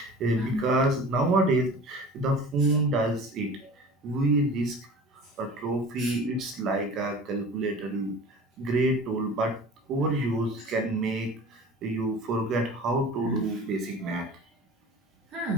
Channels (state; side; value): normal; both; correlation 0.40